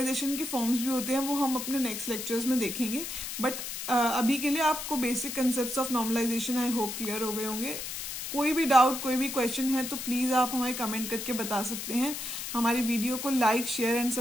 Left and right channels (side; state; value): left; noise; hiss, 6 dB below the sound